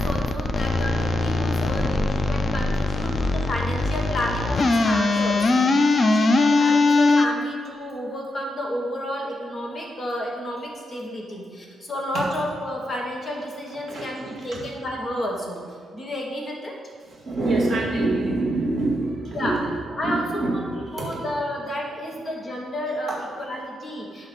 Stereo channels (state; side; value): normal; both; correlation 0.85